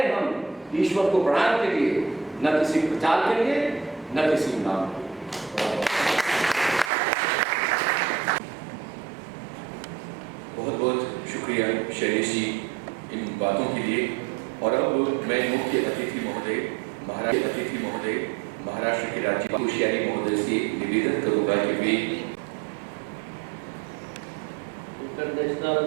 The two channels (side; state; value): left; drops out; at 6.9 s